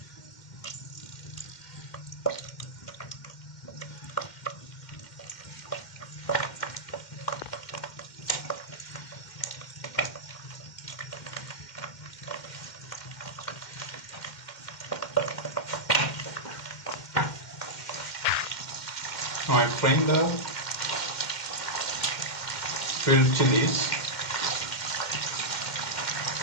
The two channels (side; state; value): right; late; 2.1 ms